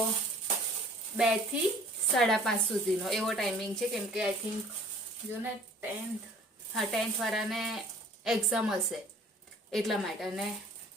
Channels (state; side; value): normal; both; correlation 0.52